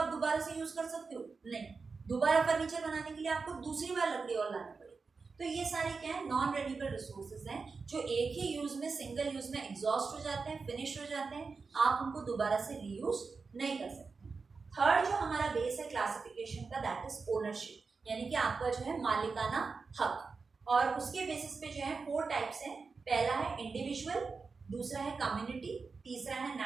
दोबारा से यूज कर सकते हो? नहीं। दोबारा फर्नीचर बनाने के लिए आपको दूसरी बार लकड़ी और लानी पड़ेगी। तो ये सारे क्या है, नॉन रेन्यूएबल रिसोर्सेज हैं जो एक ही यूज में, सिंगल यूज में एग्जॉस्ट हो जाते हैं, फिनिश हो जाते हैं, आप उनको दोबारा से रीयूज नहीं कर सकते। थर्ड जो हमारा बेस है क्लासिफिकेशन का, दैट इज ओनरशिप, यानी कि आपका जो है मालिकाना हक। और उसके बेसिस पे जो है 4 टाइप्स हैं। पहला है इंडिविजुअल, दूसरा है कम्युनिटी, तीसरा है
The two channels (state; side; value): quieter; left; 4.6 dB